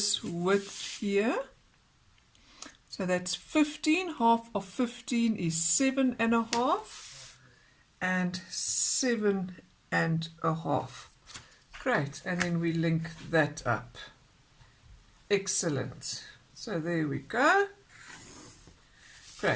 width here. So that's 15, half of 15 is 7 and a half and 7 and a half. Great, and then we link that up. Excellent. So there we go.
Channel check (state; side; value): identical; both; correlation 1.00